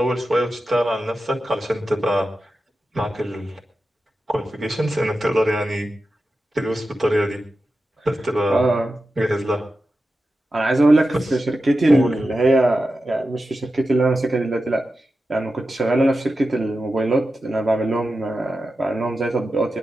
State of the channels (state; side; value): normal; both; correlation 0.92